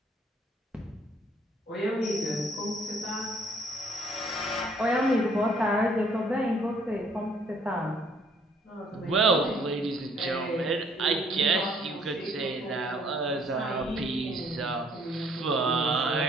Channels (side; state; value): both; normal; correlation 0.62